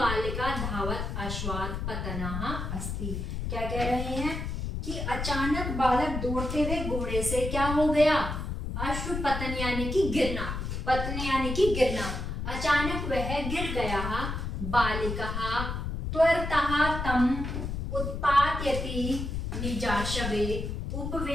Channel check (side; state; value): left; noise; rumble, 4 dB below the sound